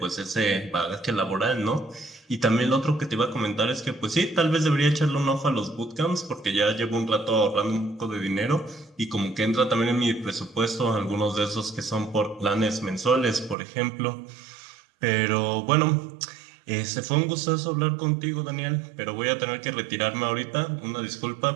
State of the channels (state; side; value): drops out; left; at 13.6 s